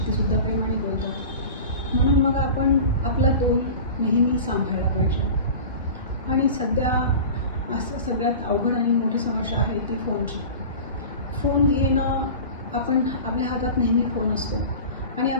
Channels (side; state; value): both; inverted; correlation -0.35